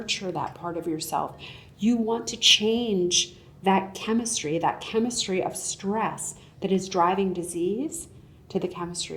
that part of yourself. You want to change that chemistry of stress that is driving disease to the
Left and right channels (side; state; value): both; identical; correlation 1.00